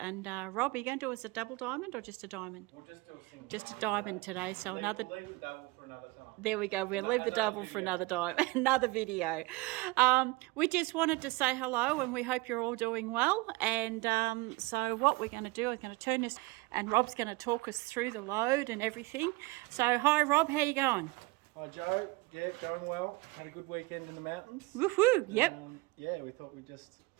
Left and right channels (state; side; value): quieter; left; 22.6 dB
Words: Rob, are you going to do us a double diamond or just a diamond? We'll just do a single Just a diamond diamond today, so we'll another... leave the double for another time. There we go. We'll leave the double for another time, another video. We just wanted to say hello, and we hope you're all doing well. And so what we're going to do is going to turn this, and Rob's going to talk us through the load and everything. So hi Rob, how you going? Hi Joe, yeah, going well. Had a good weekend in the mountains. Woohoo! Yep. Yeah, we thought we'd just